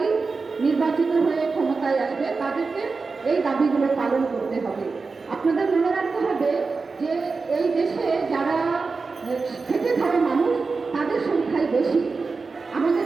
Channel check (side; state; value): left; quieter; 4.3 dB